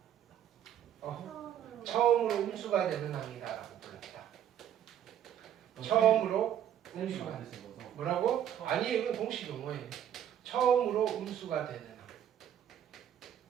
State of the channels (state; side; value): quieter; left; 10.2 dB